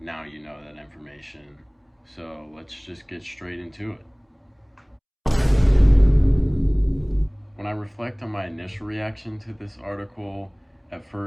you know that information. So let's just get straight into it. When I reflect on my initial reaction to this article, at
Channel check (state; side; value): identical; both; correlation 1.00